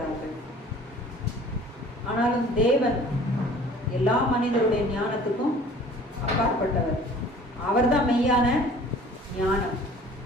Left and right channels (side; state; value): both; normal; correlation 0.49